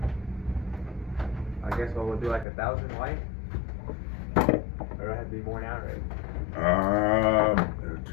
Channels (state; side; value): drops out; right; at 2.5 s